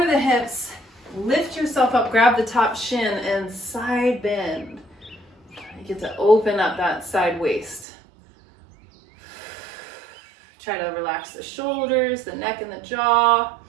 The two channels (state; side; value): drops out; left; at 7.9 s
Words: the hips. Lift yourself up. Grab the top shin and side bend. You get to open up that side waist. Try to relax the shoulders, the neck, and the jaw.